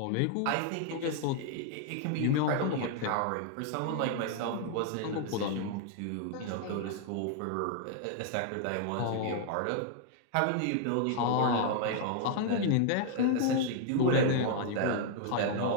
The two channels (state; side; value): different; both; correlation 0.00